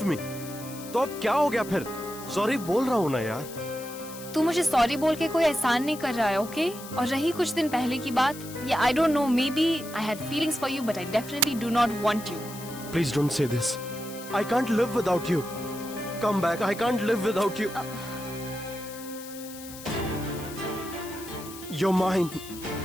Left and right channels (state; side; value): noise; left; hiss, 14 dB below the sound